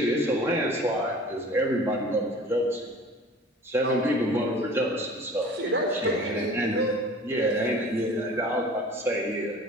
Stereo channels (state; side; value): normal; both; correlation 0.44